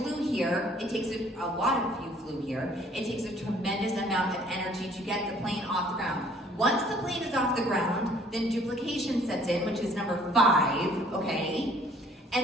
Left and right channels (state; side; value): normal; both; correlation 0.57